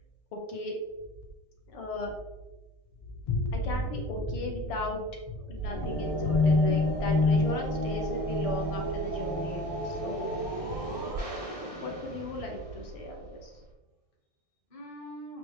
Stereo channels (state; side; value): late; right; 1.6 ms